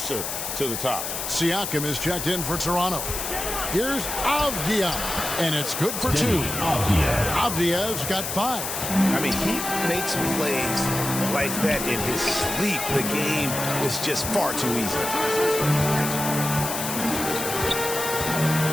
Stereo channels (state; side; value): noise; left; hiss, 4 dB below the sound